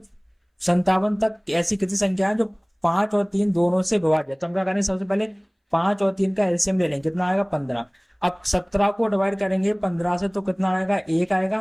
तक ऐसी कितनी संख्या है जो 5 और 3 दोनों से विभाज्य है? तो हम क्या करेंगे, सबसे पहले 5 और 3 का एलसीएम ले लेंगे। कितना आएगा? 15। अब 17 को डिवाइड करेंगे 15 से तो कितना आएगा? 1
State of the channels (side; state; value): both; identical; correlation 1.00